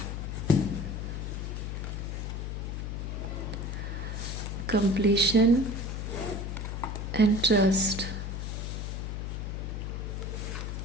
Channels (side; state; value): left; noise; hum, 4 dB below the sound